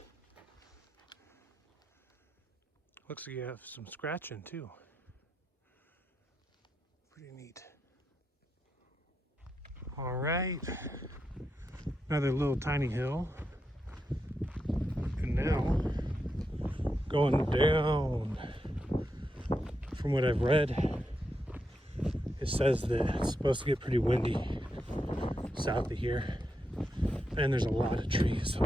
Looks like you have some scratching too. Pretty neat. All right. Another little tiny hill. And now going down. From what I've read, it says that it's supposed to get pretty windy south of here. And there's a lot of trees, a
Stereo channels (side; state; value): both; normal; correlation 0.85